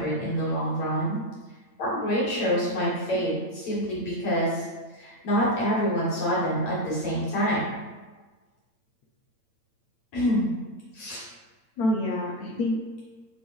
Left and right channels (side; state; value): right; late; 8.9 ms